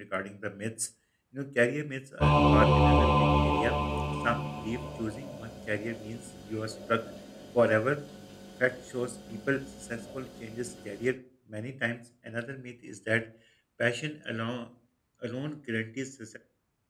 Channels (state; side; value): identical; both; correlation 1.00